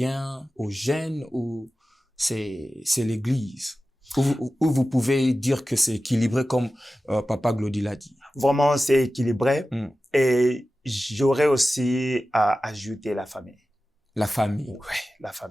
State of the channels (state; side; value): normal; both; correlation 0.95